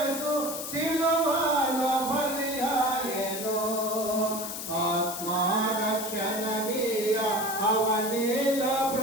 సిలువలో బలియాయెను ఆత్మరక్షణనీయ అవనిలో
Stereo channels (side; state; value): left; noise; hiss, 6 dB below the sound